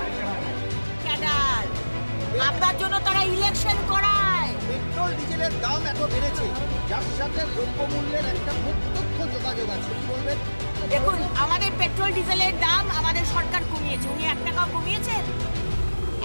ক্যাডার, আপনার জন্য তারা ইলেকশন করায়। পেট্রোল ডিজেলের দাম এত বেড়েছে, যার সাথে দ্রব্যমূল্যের একটা প্রত্যক্ষ যোগাযোগ আছে, কি বলবেন? দেখুন, আমাদের পেট্রোল ডিজেলের দাম আমাদের সরকার কমিয়েছে। উনি 1 টাকাও কমিয়েছেন?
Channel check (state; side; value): inverted; both; correlation -1.00